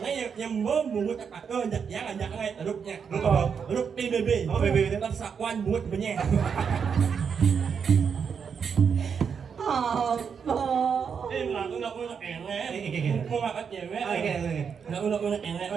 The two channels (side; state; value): left; quieter; 6.6 dB